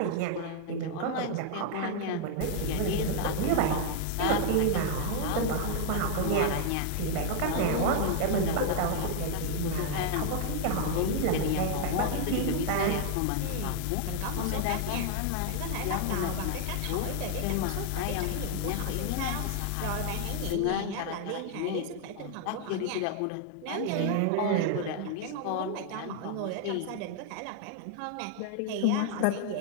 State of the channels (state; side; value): different; both; correlation 0.00